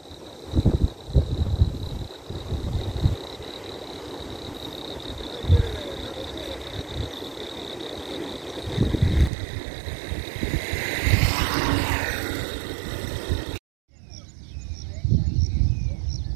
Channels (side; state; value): left; drops out; at 9.3 s